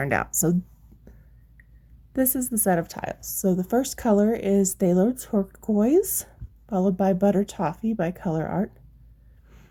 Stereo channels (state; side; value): identical; both; correlation 1.00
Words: out. So this is the set of tiles. So the first color is Phthalo Turquoise, followed by Butter Toffee by Colourarte.